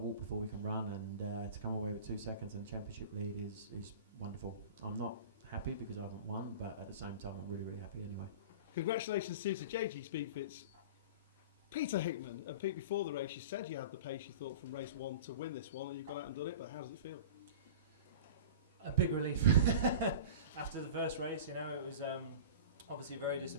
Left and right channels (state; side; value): inverted; both; correlation -0.35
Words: before we can run, and to come away with 2 seconds and championship lead is wonderful. I'm not happy because I haven't won, but at the same time, I'm really happy anyway. Congratulations to JG Speedfit's Peter Hickman. And Pete, before the race, you said you had the pace you thought from race 1 to win this one, and you've gone out and done it, but how does it feel? A big relief. After the first race, it was obviously very